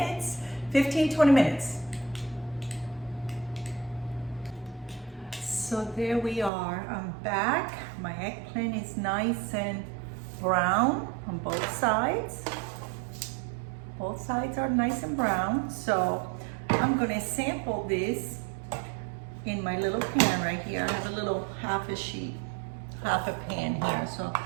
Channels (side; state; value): left; drops out; at 6.5 s